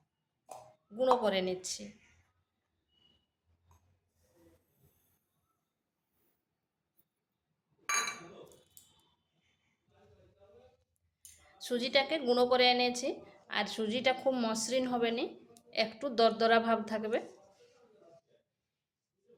গুঁড়ো করে নিচ্ছি। সুজিটাকে গুঁড়ো করে এনেছি, আর সুজিটা খুব মসৃণ হবে না, একটু দরদরা ভাব থাকবে।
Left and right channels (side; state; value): both; identical; correlation 1.00